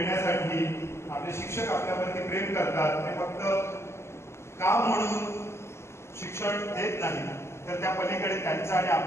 आपले शिक्षक आपल्यावरती प्रेम करतात. ते फक्त काम म्हणून शिक्षण देत नाही, तर त्या पलीकडे त्यांचं आणि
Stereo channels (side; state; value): right; late; 0.13 ms